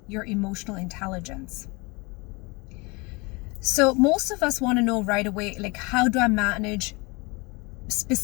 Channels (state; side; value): quieter; right; 27.1 dB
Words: your emotional intelligence. So most of us want to know right away, like, how do I manage